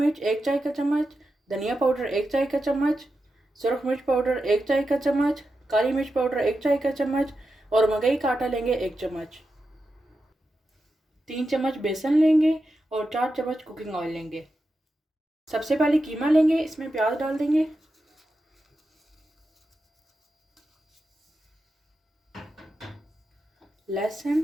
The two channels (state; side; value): normal; both; correlation 0.89